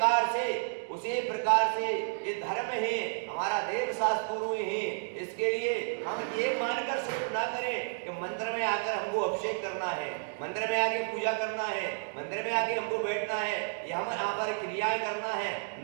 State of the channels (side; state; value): left; silent; digital silence